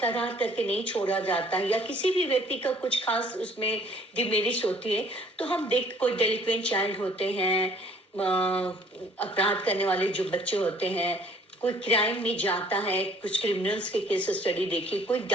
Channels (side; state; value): both; normal; correlation 0.57